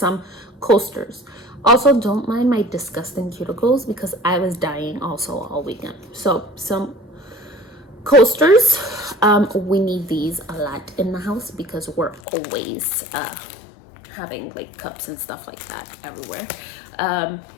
coasters. Also, don't mind my disgusting cuticles because I was dying also all weekend. So some coasters, we need these a lot in the house because we're always having like cups and stuff like that everywhere. I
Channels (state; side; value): drops out; right; at 12.2 s